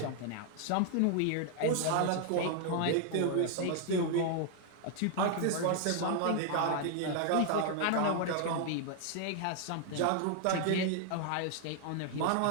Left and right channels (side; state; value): both; different; correlation 0.00